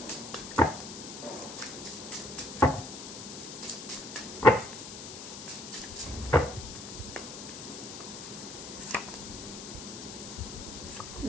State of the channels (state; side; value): noise; left; hiss, 10 dB below the sound